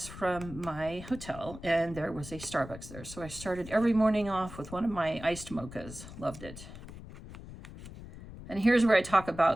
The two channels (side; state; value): left; noise; rumble, 14 dB below the sound